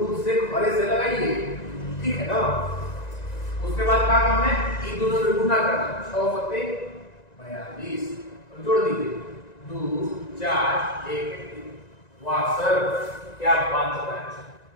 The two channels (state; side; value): late; right; 1.9 ms